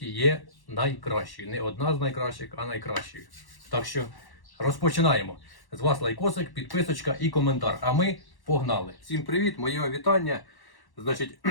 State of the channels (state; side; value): late; right; 1.1 ms